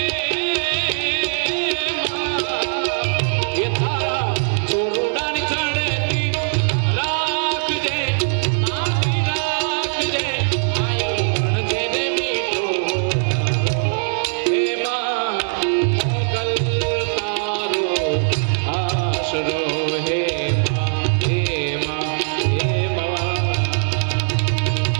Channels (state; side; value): silent; left; digital silence